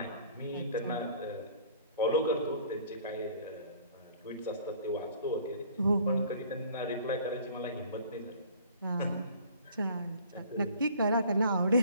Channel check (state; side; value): inverted; both; correlation -0.52